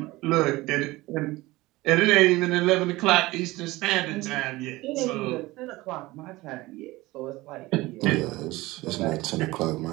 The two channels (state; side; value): quieter; left; 19.8 dB